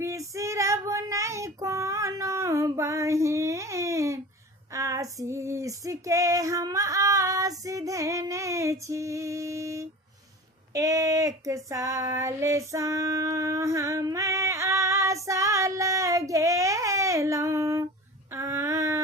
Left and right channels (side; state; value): both; normal; correlation 0.36